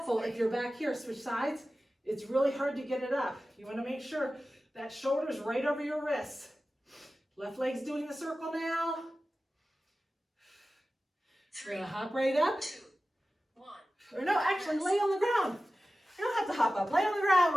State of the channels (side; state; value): both; normal; correlation 0.95